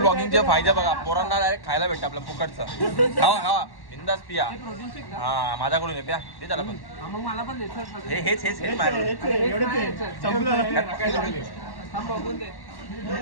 फायदे बघा. पोरांना डायरेक्ट खायला भेटतं आपलं फुकटचं. खावा खावा बिंदास पिया. प्रोटीन शेक हा माझ्याकडून आहे प्या ते झालं पण मग मला पण द्यायचं. हेच माझ्याकडून. बघून दे.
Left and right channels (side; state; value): right; late; 1.1 ms